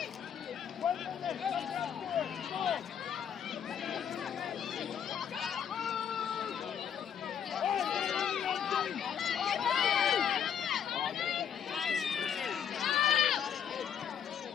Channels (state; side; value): quieter; right; 8.4 dB